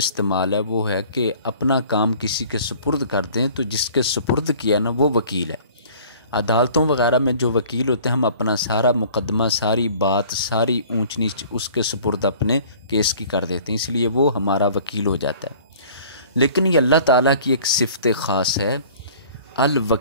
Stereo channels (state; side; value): inverted; both; correlation -0.50